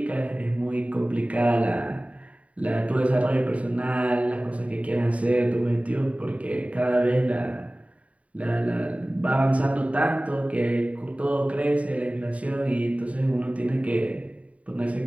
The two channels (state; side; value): late; left; 0.067 ms